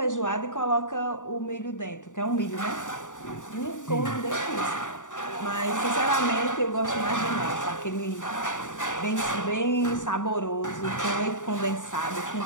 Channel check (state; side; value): late; right; 0.86 ms